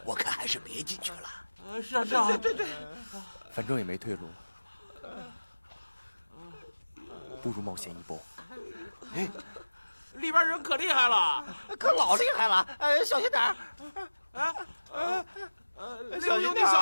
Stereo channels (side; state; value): both; inverted; correlation -1.00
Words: 我看还是别进去了。是啊。对。反正也没退路了，不如冒险一搏。哎，里边人可厉害了，可老厉害了！小心点儿！小心点，